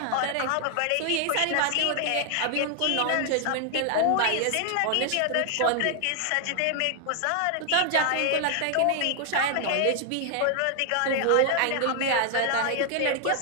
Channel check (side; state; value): both; different; correlation 0.00